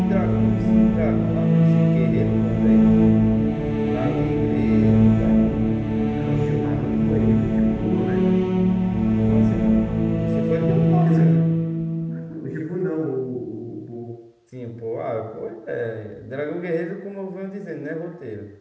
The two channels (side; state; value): both; identical; correlation 1.00